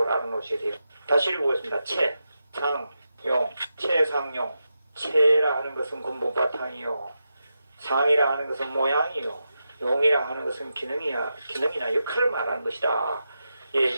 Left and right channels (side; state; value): both; inverted; correlation -0.88